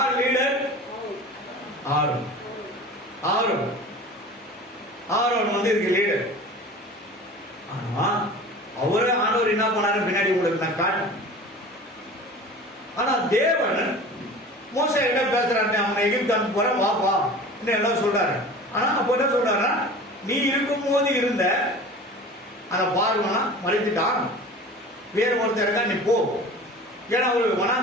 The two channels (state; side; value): normal; both; correlation 0.39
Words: லீடர்? ஆரோன். ஆரோன் ஆரோன் வந்து இதுக்கு லீடர். ஆனா அவரே ஆண்டவர் என்ன பண்ணாரு பின்னாடி உங்களுக்கு நான் காட்டு. ஆனா தேவன் மோசே கிட்ட பேசுறாரு, அவனை எகிப்து அனுப்ப போற வாப்பா எல்லாம் சொல்றாரு. ஆனா அப்ப என்ன சொல்றாரு, நீ இருக்கும் போது இருந்த அந்த பார்வனா மறைத்துட்டான், வேற ஒருத்தர் இருக்கா நீ போ. ஏன்னா அவரு